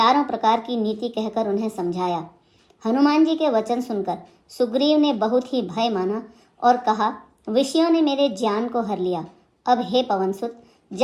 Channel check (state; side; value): identical; both; correlation 1.00